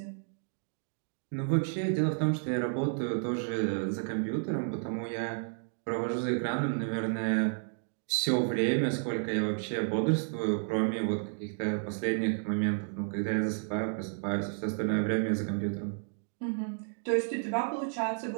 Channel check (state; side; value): silent; left; digital silence